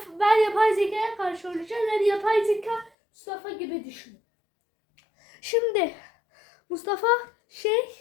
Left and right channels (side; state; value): right; drops out; at 2.9 s